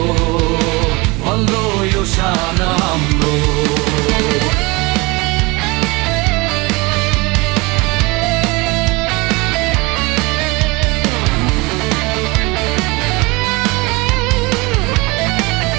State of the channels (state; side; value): quieter; left; 25.1 dB